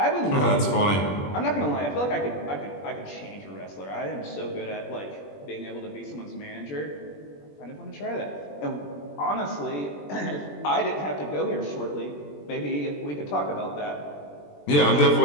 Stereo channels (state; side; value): late; right; 20 ms